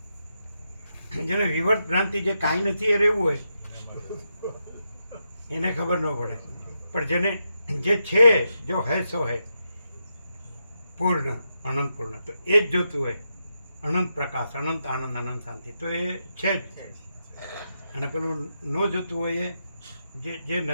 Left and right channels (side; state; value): both; inverted; correlation -0.85